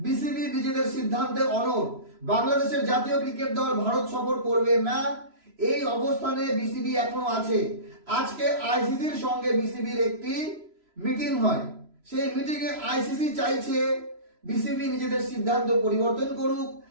বিসিবি নিজেদের সিদ্ধান্তে অনড়। বাংলাদেশের জাতীয় ক্রিকেট দল ভারত সফর করবে না, এই অবস্থানে বিসিবি এখনো আছে। আজকে আইসিসির সঙ্গে বিসিবির একটি মিটিং হয়। সেই মিটিংয়ে আইসিসি চাইছে বিসিবি নিজেদের সিদ্ধান্ত পরিবর্তন করুক,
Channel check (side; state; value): left; late; 3.0 ms